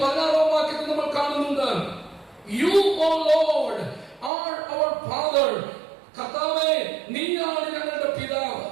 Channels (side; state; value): left; drops out; at 4.3 s